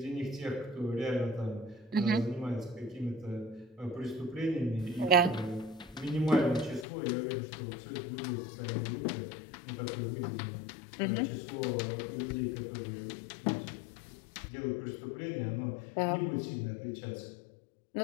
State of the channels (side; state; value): right; drops out; at 6.9 s